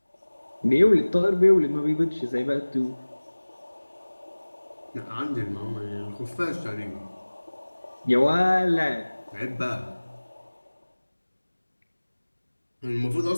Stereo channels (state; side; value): inverted; both; correlation -1.00